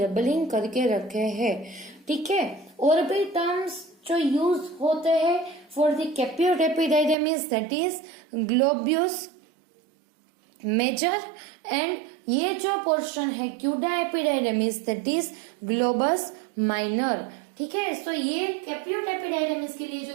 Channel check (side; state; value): left; drops out; at 7.2 s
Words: करके रखे हैं। ठीक है, और भी टर्म्स जो यूज होते हैं for the caput epididymis that is globus major, and ये जो पोर्शन है cauda epididymis that is globus minor. ठीक है, सो ये कैप्यूट एपिडाइडमिस के लिए जो